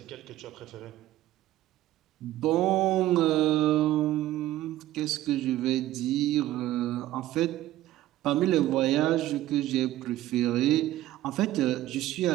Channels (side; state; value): left; quieter; 14.7 dB